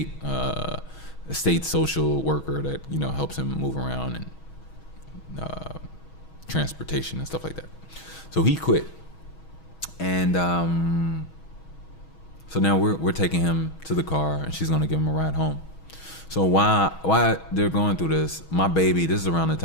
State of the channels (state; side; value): late; right; 6.3 ms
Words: social worker that helps him move around and transportation and stuff like that. So he quit, and so now we're taking him to the car, and she's gonna give him a ride home. So why they're going through this? My baby, this is around the